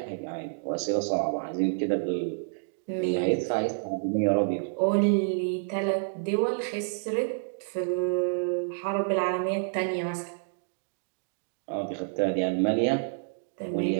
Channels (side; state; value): left; silent; digital silence